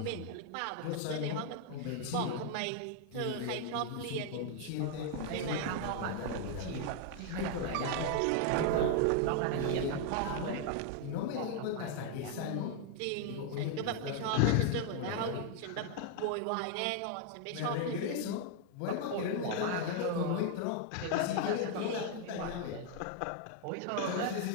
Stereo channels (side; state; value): both; different; correlation 0.00